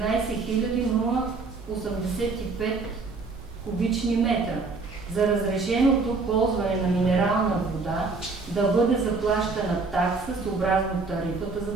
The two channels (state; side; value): quieter; left; 4.0 dB